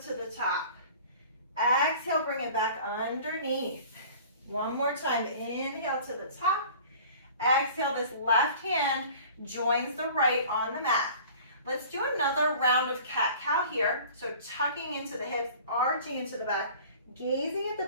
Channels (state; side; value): inverted; both; correlation -0.45